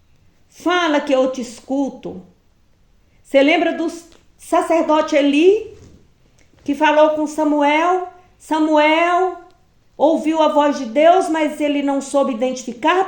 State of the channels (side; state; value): both; identical; correlation 1.00